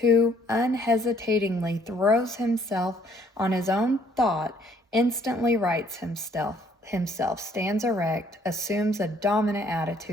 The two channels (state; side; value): normal; both; correlation 0.63